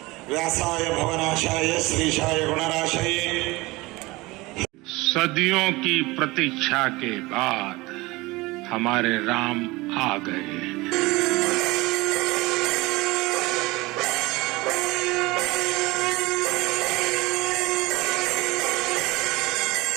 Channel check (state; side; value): quieter; left; 21.9 dB